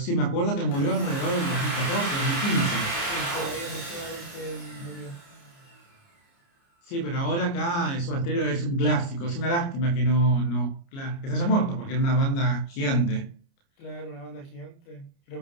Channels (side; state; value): right; late; 29 ms